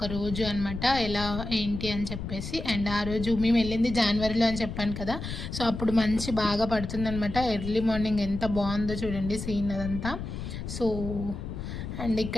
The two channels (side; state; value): left; noise; rumble, 7 dB below the sound